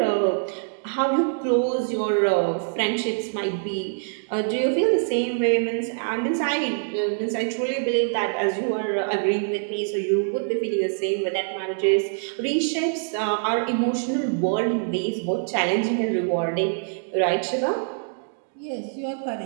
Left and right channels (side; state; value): left; silent; digital silence